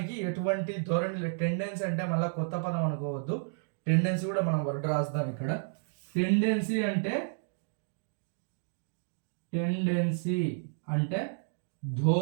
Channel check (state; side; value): silent; left; digital silence